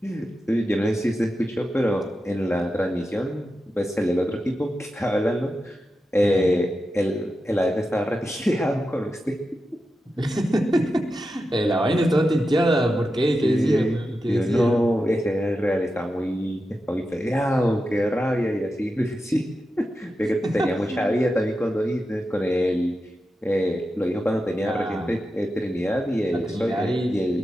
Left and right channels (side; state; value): both; normal; correlation 0.90